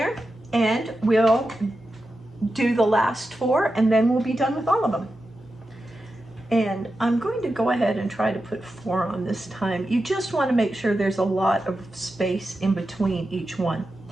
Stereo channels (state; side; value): normal; both; correlation 0.90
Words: and we'll do the last 4, and then we'll be done with all of them. And I'm going to go ahead and try to put 4 on this time. You just want to make sure there's a lot of space in between each one.